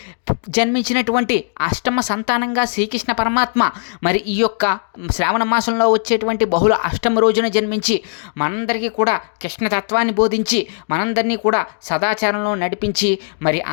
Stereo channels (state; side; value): silent; right; 67 dB below the other